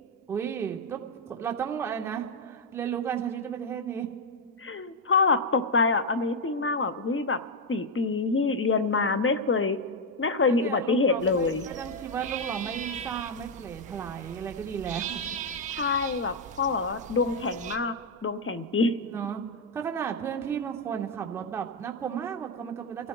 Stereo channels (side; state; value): both; normal; correlation 0.02